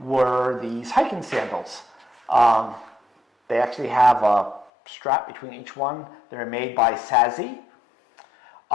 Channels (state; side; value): drops out; right; at 4.7 s